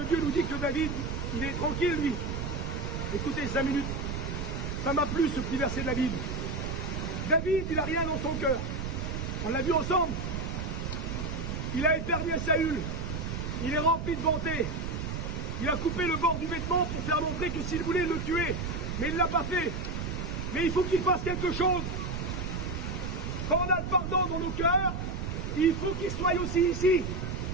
Dieu nous dit que David, il est tranquille, lui. Écoutez, 5 minutes. Ça m'a plu, ce petit verset de la Bible. David, il n'a rien dans son cœur. On l'a vu ensemble. Il a éternué Saül. Il est rempli de bonté. Il a coupé le bord du vêtement pour faire montrer que s'il voulait le tuer. Mais il ne l'a pas fait. Mais il faut qu'il fasse quelque chose. Quand on a le pardon dans nos cœurs, il faut qu'il soit aussi ici.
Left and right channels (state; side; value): noise; right; rumble, 4 dB below the sound